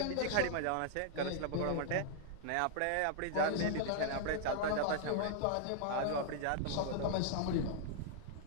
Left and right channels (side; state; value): both; different; correlation 0.00